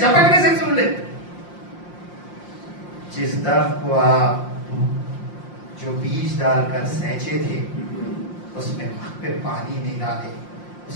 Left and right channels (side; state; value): right; late; 5.7 ms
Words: سے سن لے. جس درخت کو آپ جو بیج ڈال کر سینچے تھے اس میں وقت پہ پانی نہیں ڈالے،